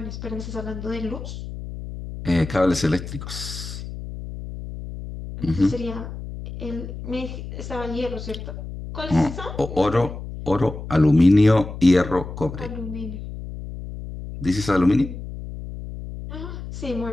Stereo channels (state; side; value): noise; left; hum, 10 dB below the sound